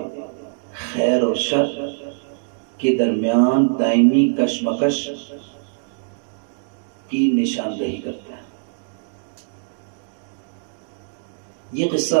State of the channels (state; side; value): silent; left; digital silence